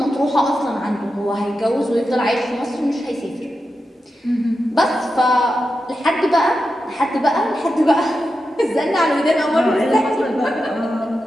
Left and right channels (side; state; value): both; normal; correlation 0.89